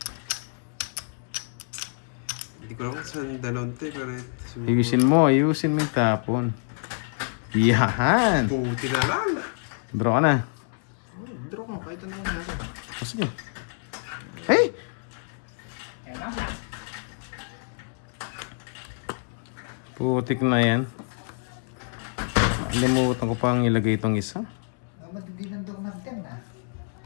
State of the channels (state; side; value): silent; right; 60 dB below the other